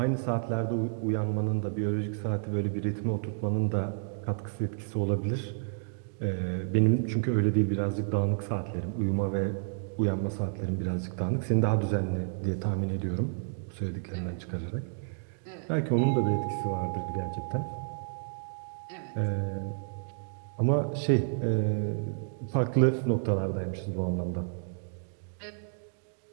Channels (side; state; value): left; silent; digital silence